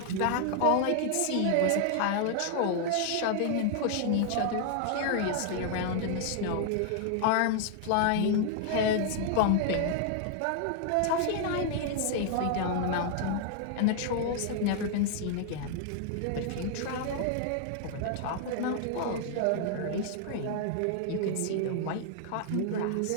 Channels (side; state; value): both; different; correlation 0.00